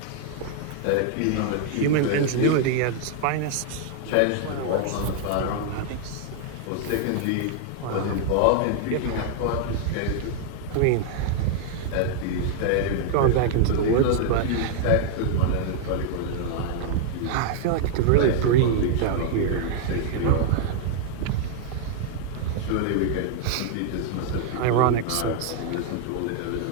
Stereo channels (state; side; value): different; both; correlation 0.00